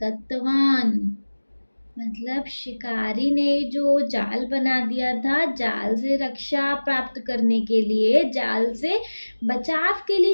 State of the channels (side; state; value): both; inverted; correlation -1.00